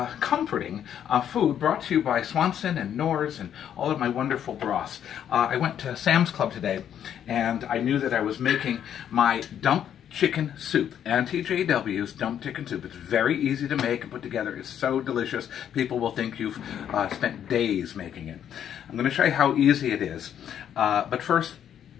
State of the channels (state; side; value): quieter; right; 9.6 dB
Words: comforting food brought to you by Swanson and Knorr's and all of my wonderful broths. I went to Sam's Club today and I knew that I was making my dump chicken soup. Auntie JW's dump chicken soup. It's very easy to make and put together. It's so delicious. People will think you've spent days making it. I'm going to show you how easy it is. But first,